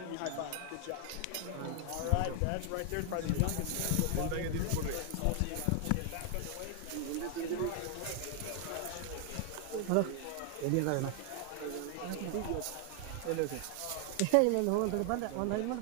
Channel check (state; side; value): different; both; correlation 0.00